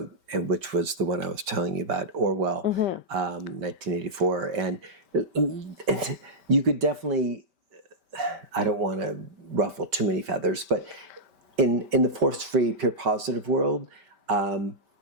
and which was the one I was telling you about, Orwell, 1984, and you could definitely. I don't want to ruffle too many feathers, but in the force-free, pure positive world.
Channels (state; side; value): late; left; 5.2 ms